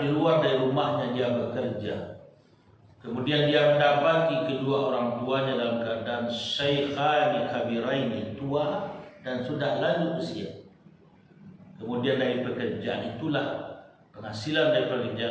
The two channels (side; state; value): both; identical; correlation 1.00